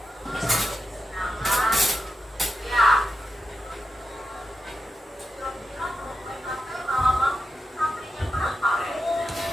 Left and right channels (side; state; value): both; normal; correlation 0.90